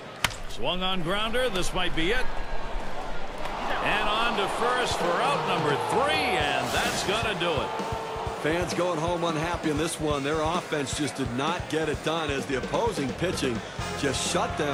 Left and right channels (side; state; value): both; identical; correlation 1.00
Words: Swung on grounder. This might be it. And on to first for out number 3, and that's going to do it. Fans going home unhappy in this one. Their offense just did not get it done as the opposing pitching just shut